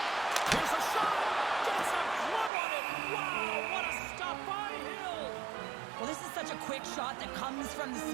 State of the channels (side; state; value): left; drops out; at 2.5 s